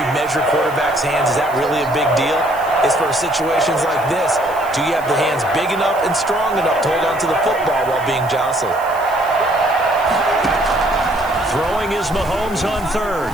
measure quarterbacks' hands. Is that really a big deal? It's for situations like this. Do you have the hands big enough and strong enough to hold on to the football while being jostled? Throwing is Mahomes on third.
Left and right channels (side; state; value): right; noise; hiss, 20 dB below the sound